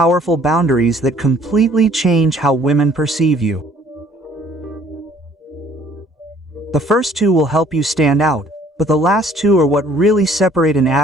boundaries that completely change how women perceive you. The first 2 will help you stand out, but the last 2 are what really separate an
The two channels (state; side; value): normal; both; correlation 0.58